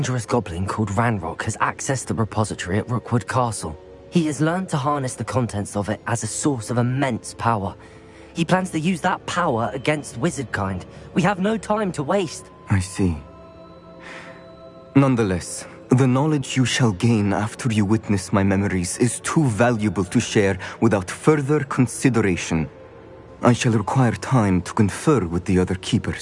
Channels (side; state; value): both; identical; correlation 1.00